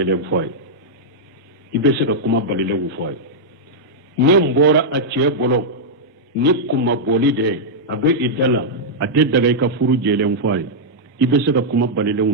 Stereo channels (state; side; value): normal; both; correlation -0.07